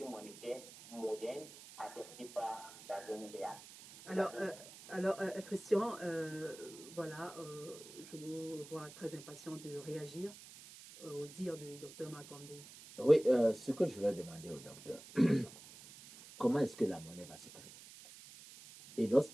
monétaire moderne adoptée par la zone réelle. Alors, Christian, voilà, je vous vois très impatient de réagir au dire du docteur Makombe. Oui, ce que je vais demander au docteur, comment est-ce que la monnaie va se créer? Et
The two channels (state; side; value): noise; right; hiss, 17 dB below the sound